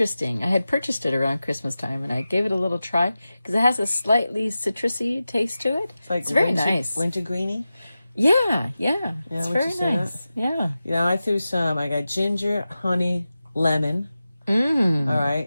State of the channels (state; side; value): inverted; both; correlation -0.94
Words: I had purchased it around Christmas time, and I gave it a little try because it has a slightly citrusy taste to it. It's very nice. Wintergreeny? Yeah. It's very nice. Yeah. I threw I got ginger, honey, lemon. All